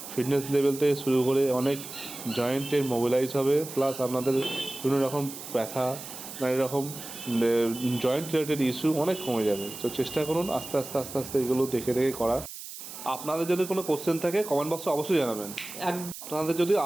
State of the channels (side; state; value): right; noise; hiss, 12 dB below the sound